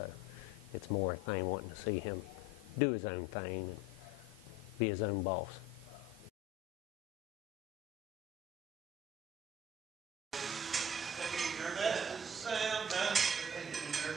it's more a thing wanting to see him do his own thing and be his own boss.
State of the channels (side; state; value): both; normal; correlation 0.44